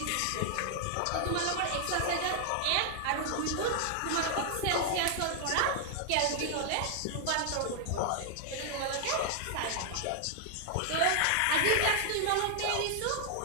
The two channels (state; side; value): different; both; correlation 0.00